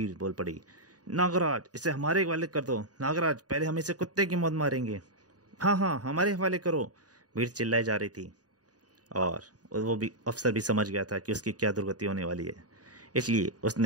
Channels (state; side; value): late; left; 0.68 ms